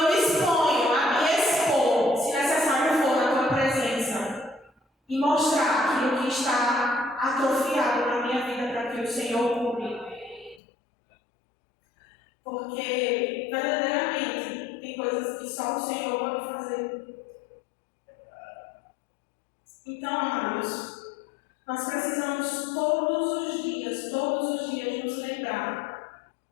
me disponho a me expor, se necessário for, na tua presença e mostrar aquilo que está atrofiado na minha vida para que o Senhor cure. Porque, verdadeiramente, tem coisas que só o Senhor pode fazer. Então, amados, nós precisamos todos os dias nos lembrar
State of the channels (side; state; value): right; drops out; at 10.6 s